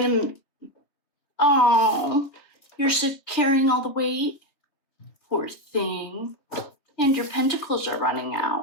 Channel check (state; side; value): late; right; 3.2 ms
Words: Oh, you're carrying all the weight? Poor thing. And your pentacles are running